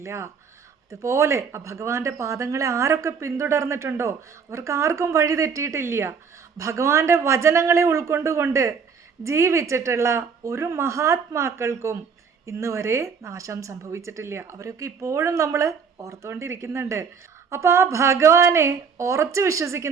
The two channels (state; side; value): quieter; left; 6.0 dB